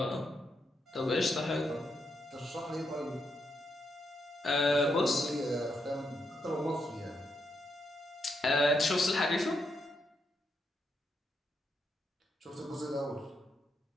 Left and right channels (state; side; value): normal; both; correlation 0.80